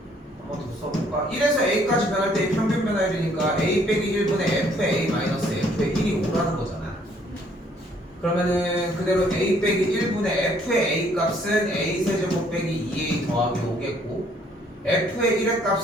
한 번 더 써볼까? 1에서 a까지 변할 때의 평균 변화율이니까 a 빼기 1분의 f의 a 마이너스 f의 1이 5라는 거잖아. 그러면은 그대로 a 빼기 1분의 f의 a 값은 a 세제곱 빼기 2a 더하기 5겠고 f의 1의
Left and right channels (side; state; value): both; normal; correlation 0.64